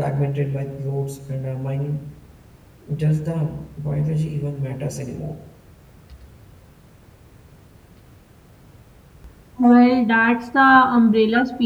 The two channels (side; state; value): both; identical; correlation 1.00